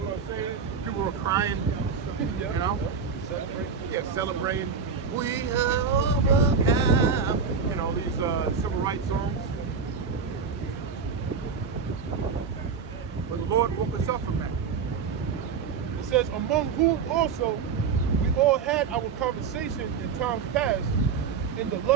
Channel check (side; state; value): left; quieter; 5.9 dB